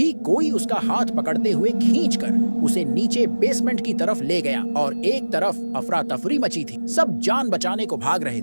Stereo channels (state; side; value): inverted; both; correlation -1.00